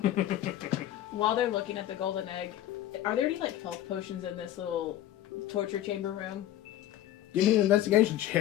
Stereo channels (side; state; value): right; quieter; 12.9 dB